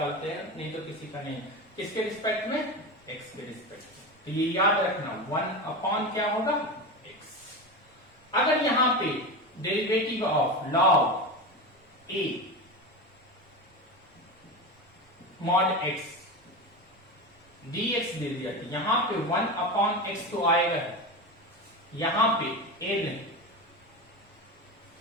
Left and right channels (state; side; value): normal; both; correlation 0.22